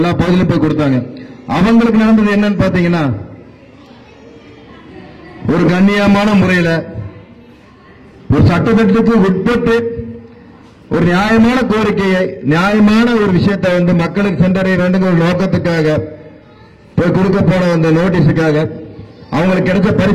பகுதியிலும் போய் கொடுத்தாங்க. அவங்களுக்கு நடந்தது என்னன்னு பாத்தீங்கன்னா, ஒரு கண்ணியமான முறையில ஒரு சட்டத்திட்டத்துக்கு உட்பட்டு ஒரு நியாயமான கோரிக்கையை, நியாயமான ஒரு விஷயத்தை வந்து மக்களுக்கு சென்றடைய வேண்டும் ஒரு நோக்கத்துக்காக போய் கொடுக்க போன அந்த நோட்டீஸுக்காக அவங்களுக்கு கிடைச்ச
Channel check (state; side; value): identical; both; correlation 1.00